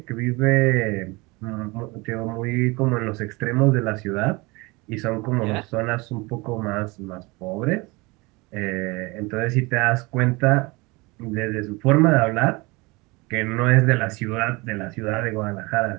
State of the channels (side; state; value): left; quieter; 24.9 dB